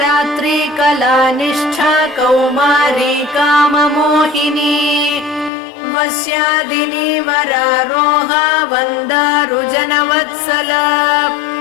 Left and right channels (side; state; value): right; drops out; at 5.5 s